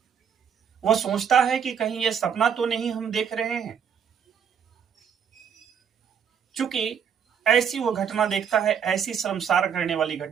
वह सोचता है कि कहीं ये सपना तो नहीं हम देख रहे हैं। चूंकि ऐसी वो घटना देखता है, ऐसी शर्मसार करने वाली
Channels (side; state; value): left; quieter; 7.6 dB